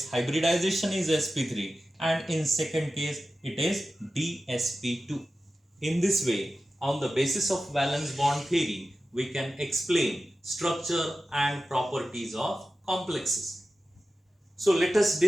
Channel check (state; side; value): normal; both; correlation 0.94